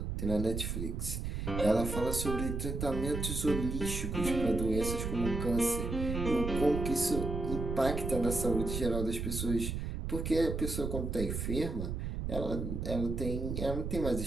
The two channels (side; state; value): right; noise; rumble, 3 dB below the sound